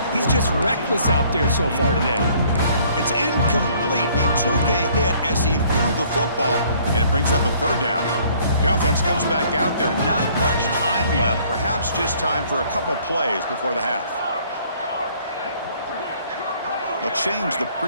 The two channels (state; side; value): inverted; both; correlation -0.60